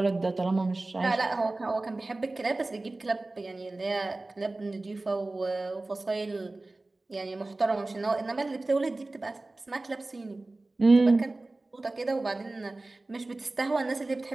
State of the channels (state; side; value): quieter; left; 3.0 dB